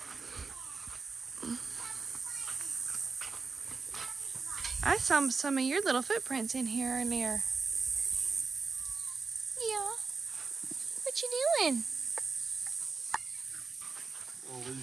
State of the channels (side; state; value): left; quieter; 4.5 dB